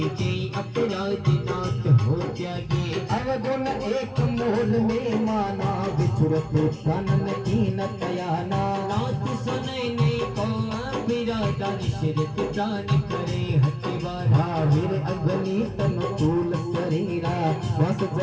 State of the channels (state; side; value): identical; both; correlation 1.00